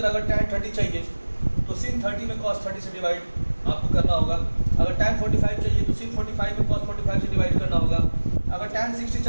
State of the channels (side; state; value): both; inverted; correlation -1.00